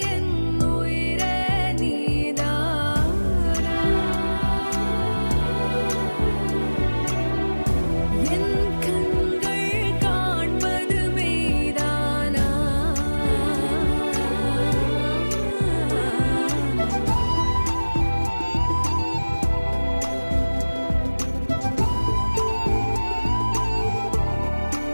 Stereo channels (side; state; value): both; inverted; correlation -1.00